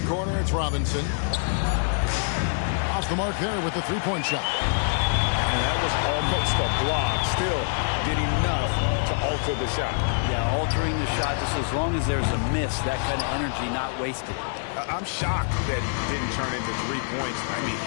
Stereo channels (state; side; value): silent; right; digital silence